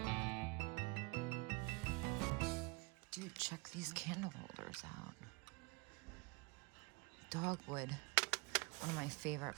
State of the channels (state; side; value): quieter; left; 26.8 dB